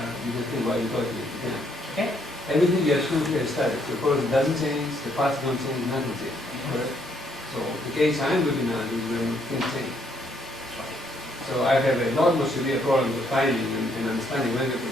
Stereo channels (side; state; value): both; normal; correlation 0.70